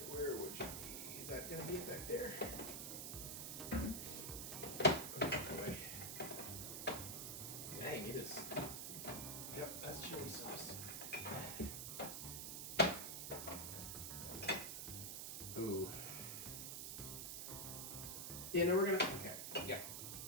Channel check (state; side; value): noise; right; hiss, 4 dB below the sound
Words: where would you be? Is that gonna be back there? Oh boy. Dang, it is. Yep, that's chili sauce. Ooh. Yeah, no, we're gonna, okay, yeah.